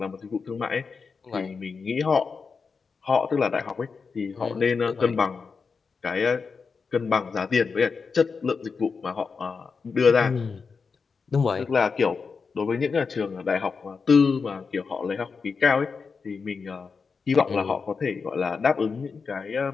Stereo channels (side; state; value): right; quieter; 5.1 dB